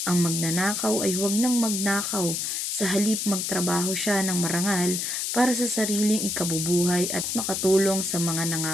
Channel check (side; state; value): left; noise; hiss, 1 dB below the sound